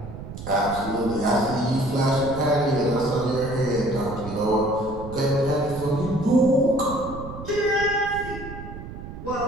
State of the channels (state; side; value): noise; right; rumble, 11 dB below the sound